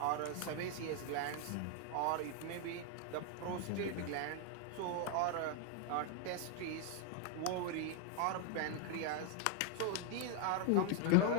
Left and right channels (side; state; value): both; different; correlation 0.00